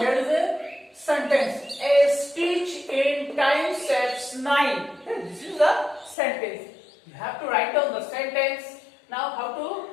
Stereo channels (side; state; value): right; drops out; at 6.2 s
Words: is a sentence. A stitch in time saves 9. Okay, this is the sentence. You have to write down the sentence. Now how to